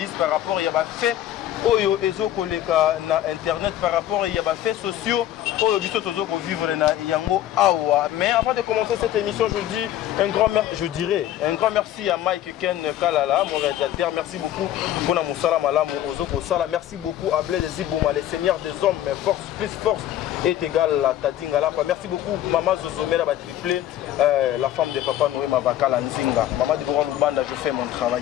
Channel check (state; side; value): quieter; right; 12.4 dB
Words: par rapport à fait. Oyo ezo koleka na internet par rapport à yaba faits sociaux oyo biso tozo ko vivre na yango awa. Mais avant de commencer cette émission, je dis un grand merci à Mike Ken Kalala, mon réalisateur. Merci beaucoup pour na musala malamu ozo ko sala. Merci beaucoup à Blaise Zibouma, les seigneurs des hommes, mais force plus force est égale à Tadi Ngalapa. Merci beaucoup Maman Zozomela ba triplé, la femme de Papa Noé Mavakala Nzinga. Maman Deborah Lubanda, je fais mon travail.